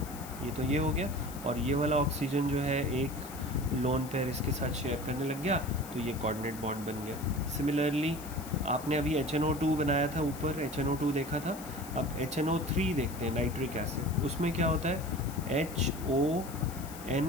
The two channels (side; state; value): left; noise; hiss, 15 dB below the sound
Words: ये तो ये हो गया. और ये वाला ऑक्सीजन जो है एक लोन पेयर इसके साथ शेयर करने लग गया, तो ये कोऑर्डिनेट बॉन्ड बन गया. सिमिलरली आपने अभी HNO2 बनाया था, ऊपर HNO2 देखा था. अब HNO3 देखते हैं, नाइट्रिक एसिड. उसमें क्या होता है,